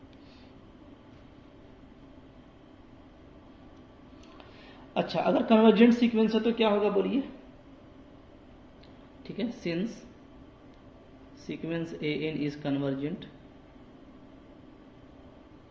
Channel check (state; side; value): identical; both; correlation 1.00